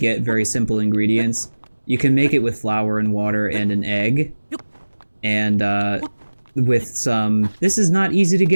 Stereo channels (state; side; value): inverted; both; correlation -1.00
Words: very simple ingredients, you can make it with flour and water and an egg, and, with some, this is not easy to